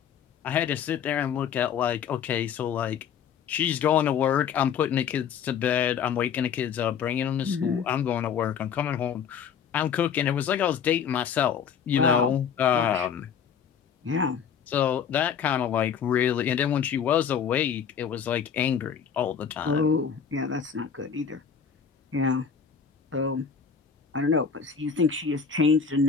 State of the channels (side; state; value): right; quieter; 7.2 dB